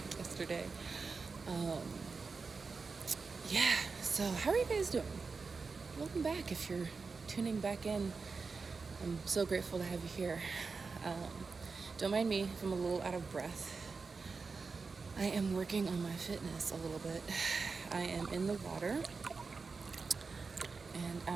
yesterday. Um, yeah, so how are you guys doing? Welcome back if you're tuning back in. I'm so grateful to have you here. Don't mind me if I'm a little out of breath. I am working on my fitness a little bit. I am in the water and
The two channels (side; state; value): left; quieter; 4.6 dB